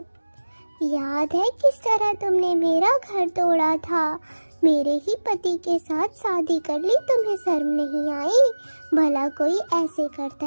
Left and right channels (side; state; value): both; inverted; correlation -1.00